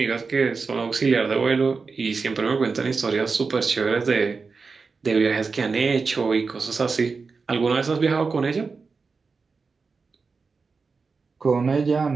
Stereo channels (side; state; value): left; quieter; 4.6 dB